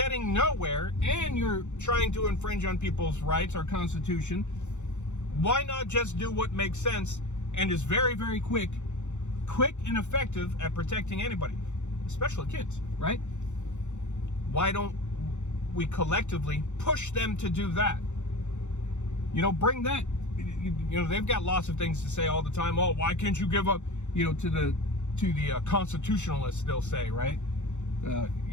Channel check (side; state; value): right; late; 0.84 ms